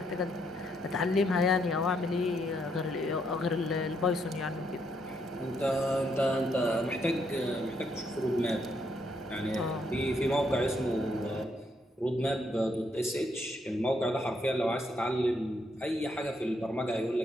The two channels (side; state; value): both; normal; correlation 0.75